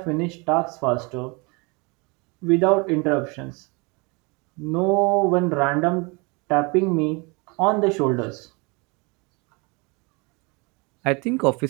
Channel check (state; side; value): quieter; left; 29.0 dB